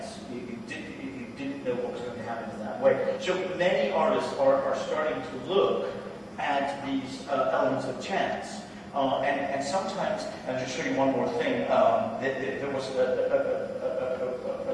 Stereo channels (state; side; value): identical; both; correlation 1.00